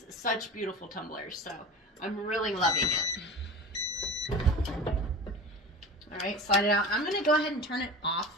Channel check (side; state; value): both; normal; correlation 0.33